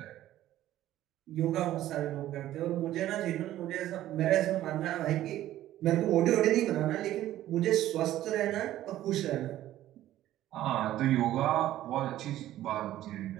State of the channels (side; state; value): left; quieter; 13.7 dB